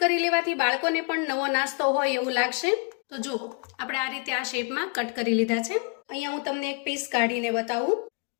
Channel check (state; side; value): quieter; right; 37.3 dB